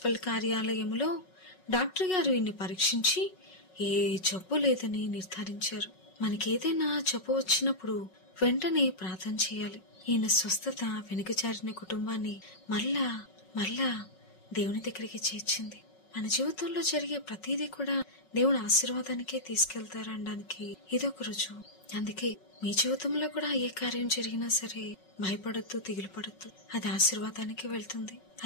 కార్యాలయంలో డాక్టర్ గారు ఈయన్ని పరీక్షించి ఏ జబ్బు లేదని నిర్ధారించారు. మనకేదైనా జబ్బు వచ్చినప్పుడు వెంటనే ప్రార్థన చేయాలి. ఈయన స్వస్థత వెనుకజారిన కుటుంబాన్ని మళ్ళా దేవుని దగ్గరికి చేర్చింది. మన జీవితంలో జరిగే ప్రతిదీ కూడా దేవుని ఆశీర్వాదానికే తీసుకెళ్తారనడానికి ఇదొక రుజువు. అందుకే మీ జీవితంలో కూడా ఏ కార్యం జరిగినా సరే భయపడద్దు, దిగులు పడద్దు. అది ఆశీర్వాదానికి వెళ్తుంది.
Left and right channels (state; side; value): late; right; 5.4 ms